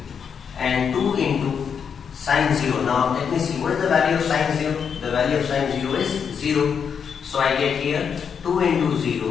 and 2 into sin 0. Now let me see, what is the value of sin 0? The value of sin 0 is 0. So I get here 2 into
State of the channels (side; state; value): right; quieter; 7.0 dB